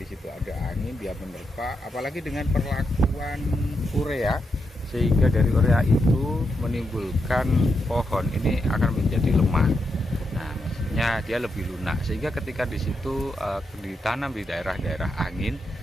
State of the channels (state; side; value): normal; both; correlation 0.83